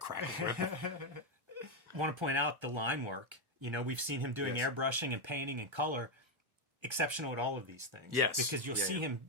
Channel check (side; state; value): left; late; 1.3 ms